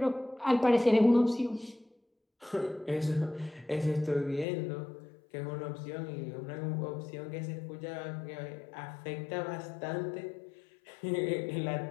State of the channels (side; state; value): right; drops out; at 4.5 s